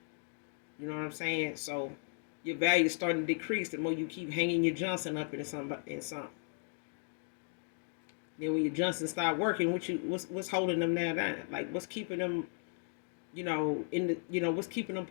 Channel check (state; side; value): silent; right; 54 dB below the other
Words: You know what I'm saying? So your value is starting to decrease the more you keep hanging your Johnson up in something. Then when your Johnson start working, what's holding them now down? Like, what's keeping them, you know, what's keeping them